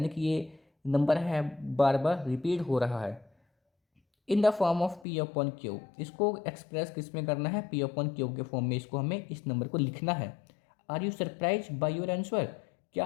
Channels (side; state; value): right; drops out; at 5.1 s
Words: कि ये नंबर है बार बार रिपीट हो रहा है in the form of P upon Q. इसको एक्सप्रेस किस में करना है, पी अपॉन क्यू के फॉर्म में इसको हमें इस नंबर को लिखना है। Are you surprise by your answer, क्या